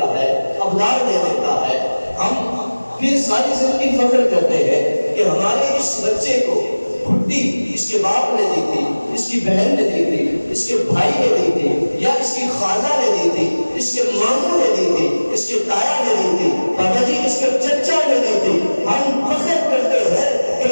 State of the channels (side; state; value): both; inverted; correlation -1.00